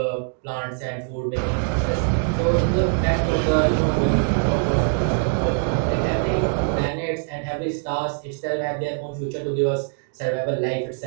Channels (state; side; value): silent; left; 58 dB below the other